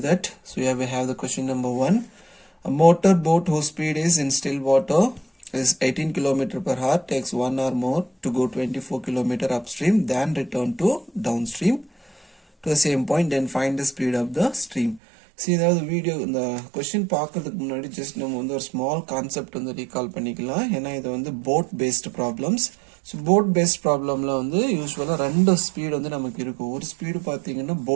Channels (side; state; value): left; drops out; at 15.0 s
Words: that. So here we have the question number 1. A motor boat whose speed is in still water is 18 km per hour takes 1 hour more to go 24 km upstream than return to downstream to the same point, then find the speed of the stream. See, the video இந்த கொஸ்டின் பார்க்கறதுக்கு முன்னாடி ஜஸ்ட் நம்ம வந்து ஒரு ஸ்மால் கான்செப்ட் வந்து ரீகால் பண்ணிக்கலாம். ஏன்னா இது வந்து boat based problems. So boat based ப்ராப்ளமில் வந்து யூஸ்வலாக ரெண்டு ஸ்பீடு வந்து நமக்கு இருக்கும். ஒரு ஸ்பீடு பார்த்தீங்கன்னா